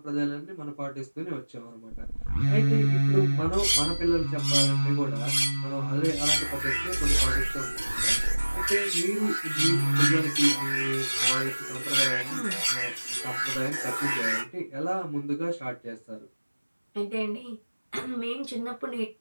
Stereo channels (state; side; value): inverted; both; correlation -1.00